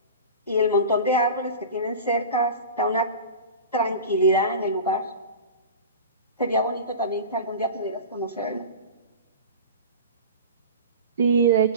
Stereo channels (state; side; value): inverted; both; correlation -0.32